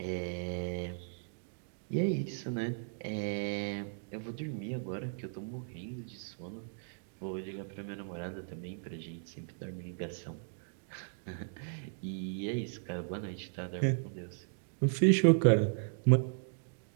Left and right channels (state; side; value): silent; left; digital silence